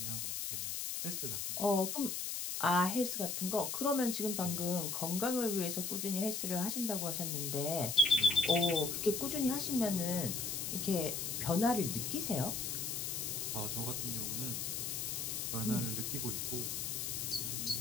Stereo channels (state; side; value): noise; left; hiss, 2 dB below the sound